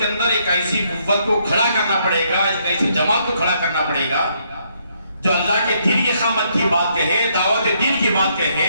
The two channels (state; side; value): inverted; both; correlation -0.73